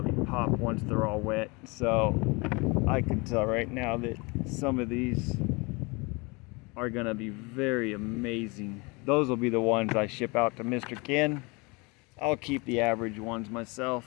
pop once they're all wet. So I can tell right now that some of these are gonna be very amazing. Those will be the ones I ship out to Mr. Ken. I'll keep the average ones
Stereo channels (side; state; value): right; quieter; 27.7 dB